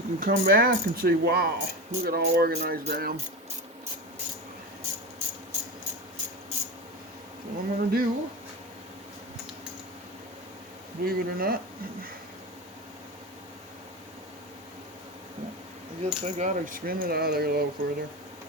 can come back and say, wow, look at how organized I am. So what I'm going to do, believe it or not, I guess I got to spin it out of there a little further.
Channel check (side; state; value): both; normal; correlation 0.24